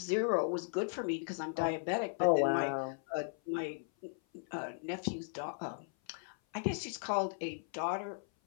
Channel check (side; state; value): right; silent; 53 dB below the other